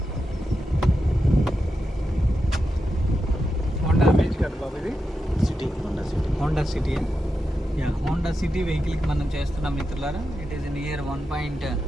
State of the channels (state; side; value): normal; both; correlation 0.88